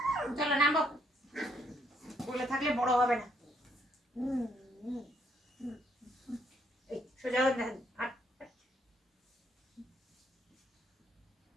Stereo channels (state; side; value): normal; both; correlation 0.71